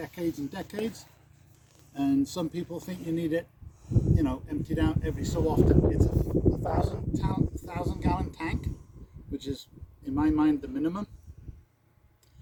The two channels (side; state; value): both; identical; correlation 1.00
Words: and decades, and some people think you need it, emptied out every so often. It's a 1,000 gallon tank, which is in my mind the minimum.